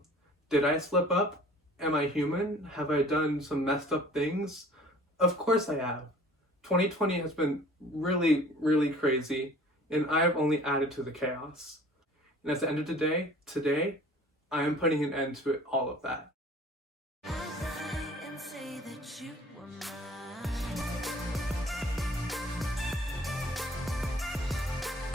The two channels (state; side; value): normal; both; correlation 0.49